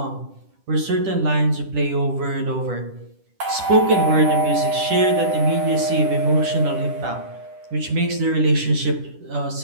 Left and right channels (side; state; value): left; late; 10 ms